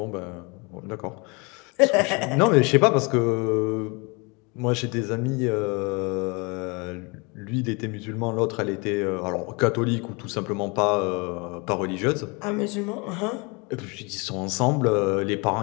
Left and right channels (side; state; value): right; quieter; 29.5 dB